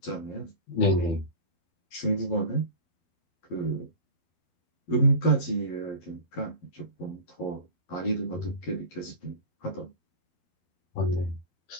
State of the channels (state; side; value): late; right; 11 ms